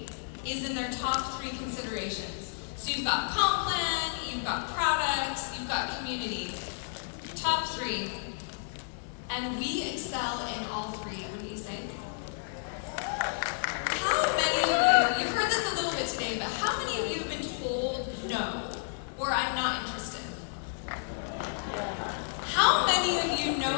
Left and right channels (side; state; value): right; silent; 57 dB below the other